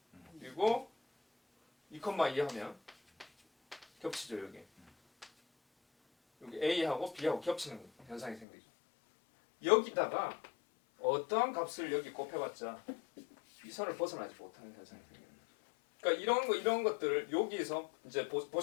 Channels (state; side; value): drops out; right; at 8.5 s